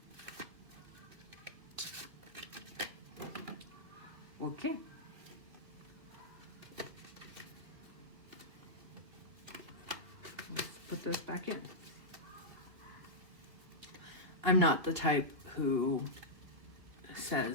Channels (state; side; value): late; left; 2.8 ms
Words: Okay. Let's put this back in. I'm not the type who